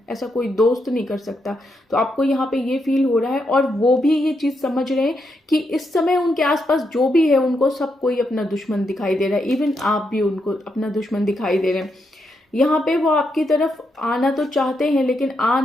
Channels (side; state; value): both; normal; correlation 0.81